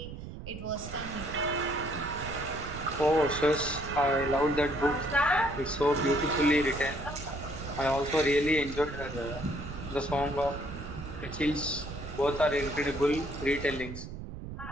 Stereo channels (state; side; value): noise; right; rumble, 10 dB below the sound